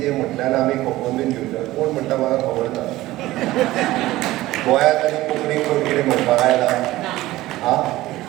म्हटल्यार आमी खपोवन बीन घेवना. कोण म्हणटा म्हाका खबर ना. गोंयांत आनी कोंकणीक कोण कितें म्हणपाक आयला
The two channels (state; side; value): quieter; left; 17.0 dB